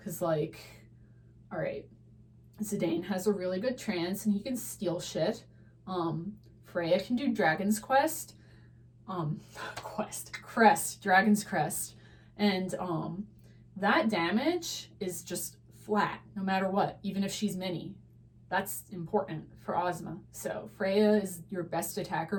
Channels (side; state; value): both; identical; correlation 1.00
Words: Cause like, all right, Zidane has a really good trance and he can steal shit. Freya can do Dragon's Quest. Dragon's Crest. And that damage is just flat, no matter what, even if she's mini. That's important for Ozma. So Freya is your best